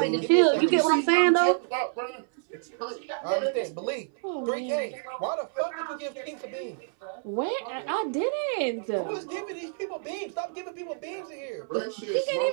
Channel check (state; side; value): silent; left; 59 dB below the other